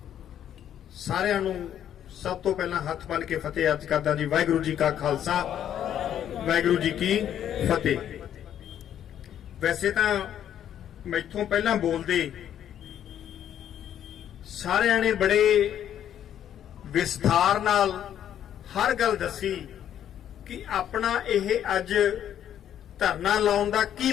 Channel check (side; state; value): right; quieter; 10.2 dB